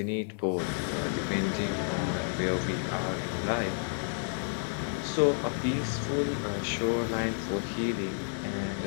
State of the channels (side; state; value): right; silent; 57 dB below the other